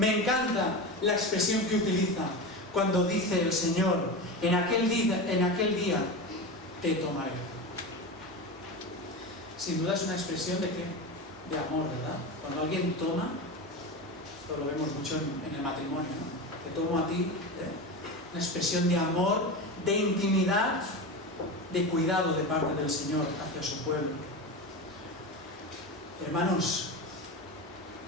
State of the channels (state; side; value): normal; both; correlation 0.24